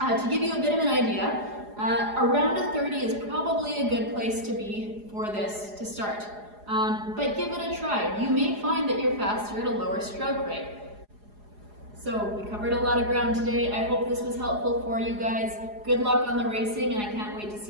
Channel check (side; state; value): left; late; 4.8 ms